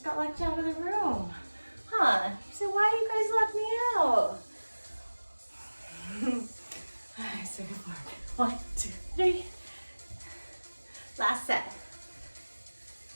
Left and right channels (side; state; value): both; inverted; correlation -1.00